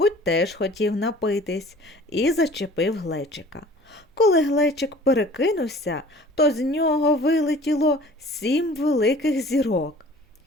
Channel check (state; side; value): normal; both; correlation 0.47